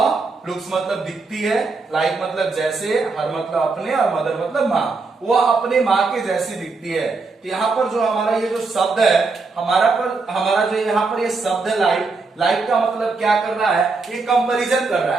लुक्स मतलब दिखती है, लाइक मतलब जैसे, हर मतलब अपने, और मदर मतलब माँ, वह अपने माँ के जैसी दिखती है। तो यहाँ पर जो हमारा ये जो शब्द है, हमारा जो यहाँ पर ये शब्द है लाइक का मतलब क्या कर रहा है? ये कंपैरिजन कर रहा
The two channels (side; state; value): left; quieter; 4.1 dB